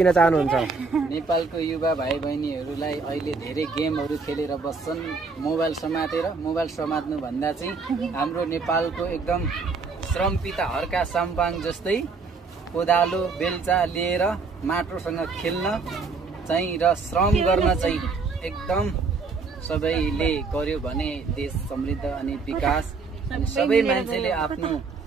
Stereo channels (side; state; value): left; quieter; 4.5 dB